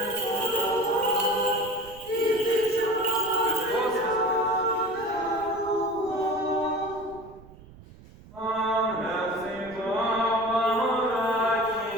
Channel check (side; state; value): right; noise; rumble, 21 dB below the sound